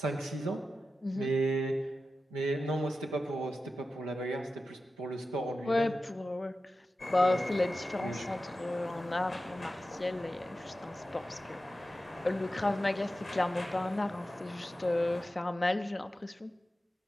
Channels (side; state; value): both; normal; correlation 0.92